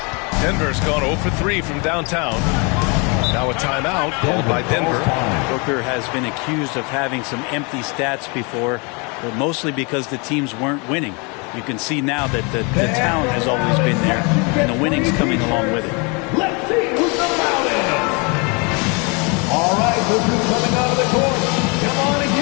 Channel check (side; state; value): right; quieter; 31.5 dB